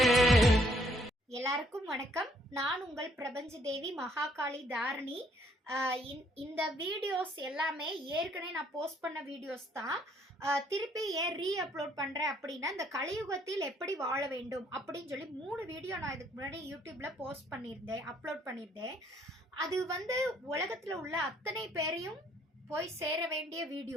எல்லாருக்கும் வணக்கம். நான் உங்கள் பிரபஞ்ச தேவி மகாகாளி தாரணி. இந்த வீடியோஸ் எல்லாமே ஏற்கனவே நான் போஸ்ட் பண்ண வீடியோஸ் தான். திருப்பி ஏன் அப்லோட் பண்ணுறேன் அப்படின்னா, இந்த கலியுகத்தில் எப்படி வாழ வேண்டும் அப்படின்னு சொல்லி 3 வீடியோ நான் இதுக்கு முன்னாடி யூடியூப்ல போஸ்ட் பண்ணியிருந்தேன், அப்லோட் பண்ணியிருந்தேன். அது உலகத்தில் உள்ள அத்தனை பேரையும் போய் சேர வேண்டிய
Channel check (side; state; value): both; normal; correlation 0.66